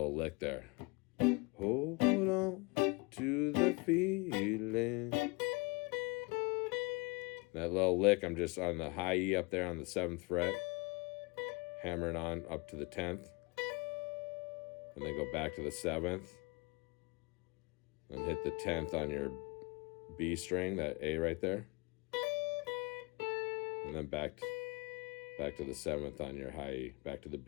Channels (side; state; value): right; quieter; 27.4 dB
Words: lick there. Hold on to the feeling. That little lick, I'm just on the high E up there on the 7th fret. Hammering on up to the 10th. And then go back to the 7th. And hit the 10th on your B string, that A right there. And then back to the 7th on your high E, back to the